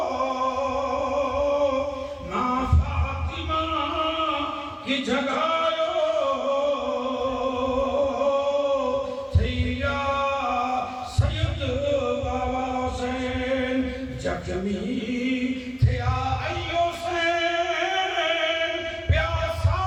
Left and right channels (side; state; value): both; identical; correlation 1.00